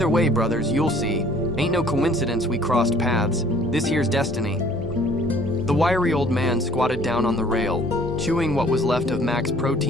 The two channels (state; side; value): normal; both; correlation 0.56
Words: way, brothers, you'll see. Ain't no coincidence we crossed paths. This here's destiny." The wiry old man squatted down on the rail, chewing what was left of Mac's